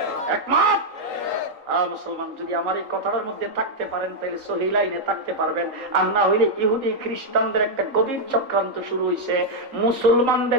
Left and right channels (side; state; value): left; late; 3.8 ms